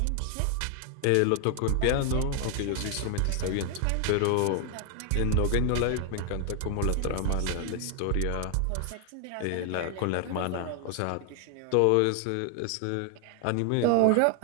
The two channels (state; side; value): different; both; correlation 0.00